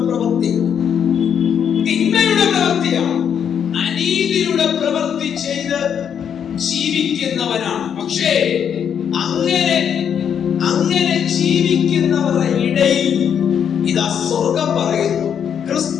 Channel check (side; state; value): right; quieter; 8.2 dB